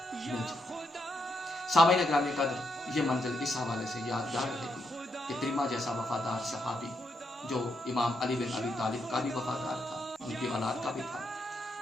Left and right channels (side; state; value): both; normal; correlation 0.80